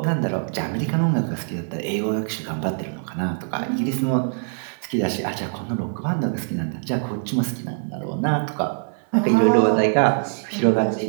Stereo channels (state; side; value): silent; left; 56 dB below the other